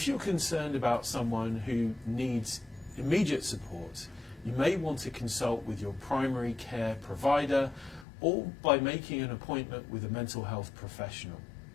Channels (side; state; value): right; drops out; at 8.1 s